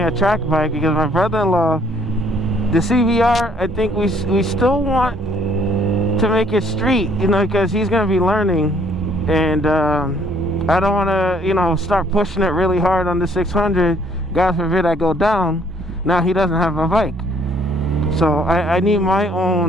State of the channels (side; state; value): both; normal; correlation 0.62